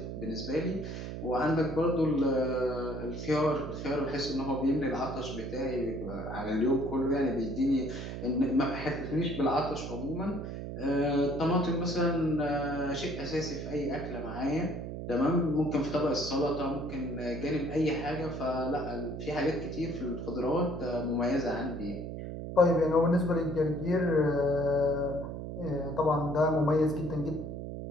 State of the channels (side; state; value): right; noise; hum, 7 dB below the sound